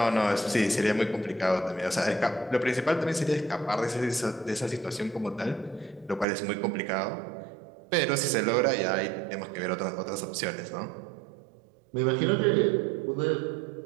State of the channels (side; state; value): left; drops out; at 6.2 s